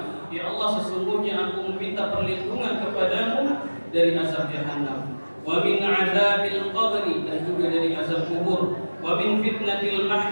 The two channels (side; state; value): both; inverted; correlation -1.00